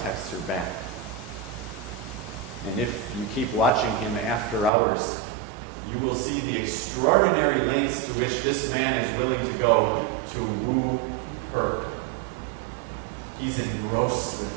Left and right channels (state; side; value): drops out; left; at 4.7 s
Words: texts her back. And if you keep watching him after hours, you will see the extraordinary lengths to which this man is willing to go to woo her. He's engrossed